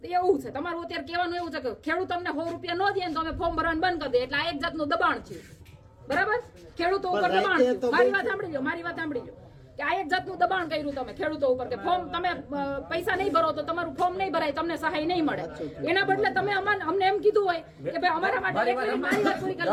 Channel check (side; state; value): both; identical; correlation 1.00